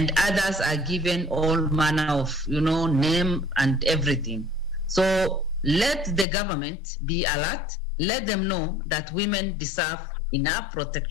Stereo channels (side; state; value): right; drops out; at 6.2 s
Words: others are given all manner of, name and everything. So let the government be alert, let them know that women deserve enough